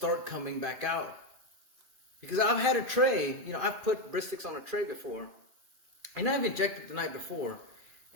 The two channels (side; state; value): left; late; 2.5 ms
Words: coming back out. Because I've had a tray, you know, I've put briskets on a tray before, and I've injected the night before,